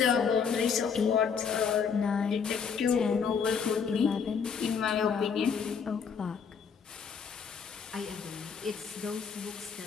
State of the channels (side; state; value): right; quieter; 6.3 dB